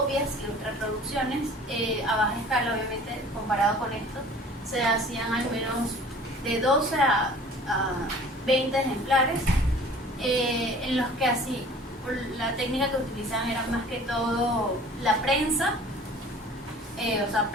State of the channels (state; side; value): normal; both; correlation 0.47